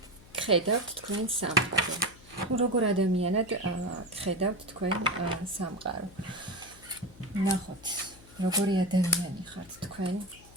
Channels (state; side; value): noise; left; hum, 22 dB below the sound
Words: ხედავთ თქვენ სამყარო. როგორ ადამიანად ხედავთ თქვენ სამყარო. ნახოთ, როგორი ადამიანი ხართ თქვენ